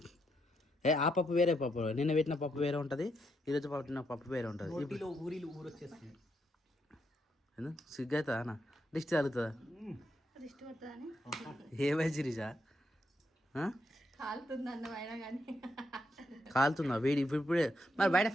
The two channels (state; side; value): normal; both; correlation 0.79